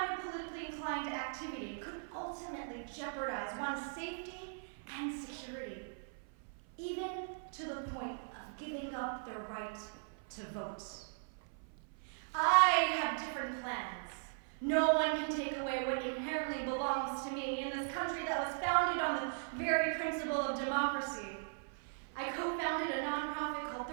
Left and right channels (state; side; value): silent; left; 52 dB below the other